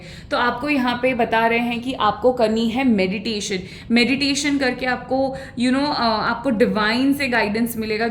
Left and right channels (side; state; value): both; identical; correlation 1.00